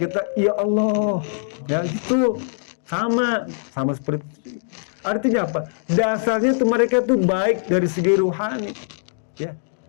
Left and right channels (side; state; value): right; silent; digital silence